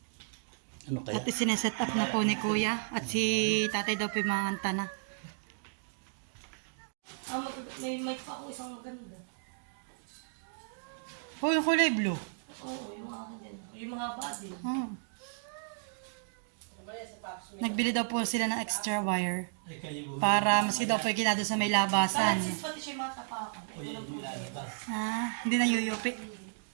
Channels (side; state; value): left; silent; digital silence